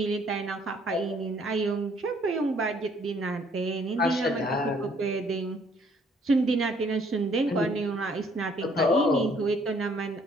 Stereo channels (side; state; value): both; normal; correlation 0.63